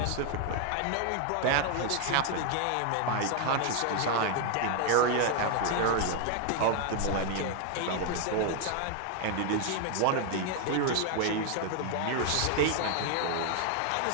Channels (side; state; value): both; different; correlation 0.00